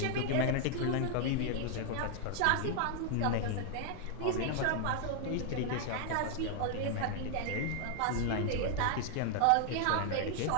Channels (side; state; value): both; different; correlation 0.00